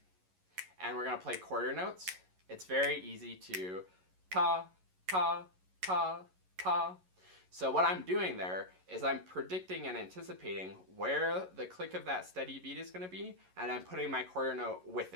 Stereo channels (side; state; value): left; late; 11 ms